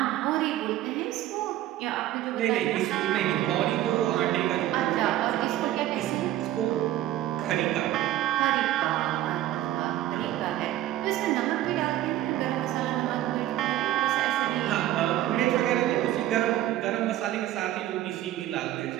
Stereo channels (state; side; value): quieter; left; 13.8 dB